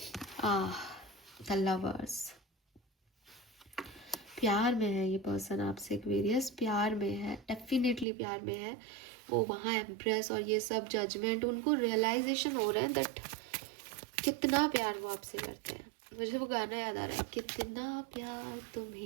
The lovers, प्यार में है ये पर्सन आपसे, एक्वेरियस प्यार में है, डेफिनेटली प्यार में है। वो वहाँ एम्प्रेस और ये सब जजमेंट, उनको रियलाइजेशन हो रहा है दैट कितना प्यार वो आपसे करते हैं। मुझे वो गाना याद आ रहा है, कितना प्यार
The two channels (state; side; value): drops out; left; at 8.1 s